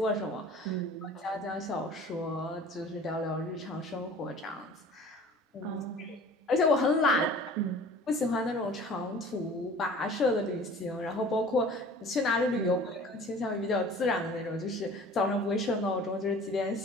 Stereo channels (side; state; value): both; normal; correlation 0.45